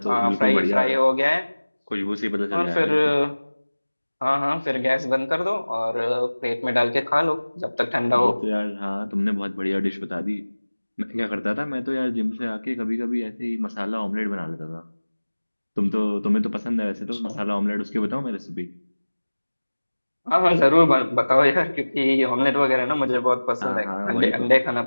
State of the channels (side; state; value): both; inverted; correlation -1.00